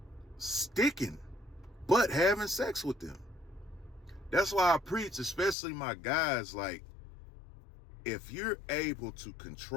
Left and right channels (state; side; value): drops out; right; at 5.6 s